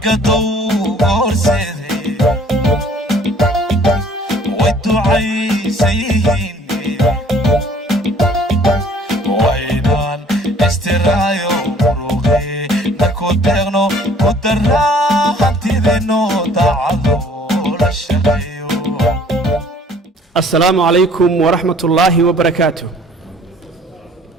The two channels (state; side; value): normal; both; correlation 0.55